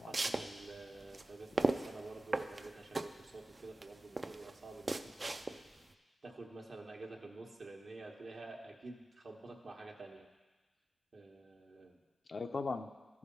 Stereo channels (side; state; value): both; normal; correlation 0.95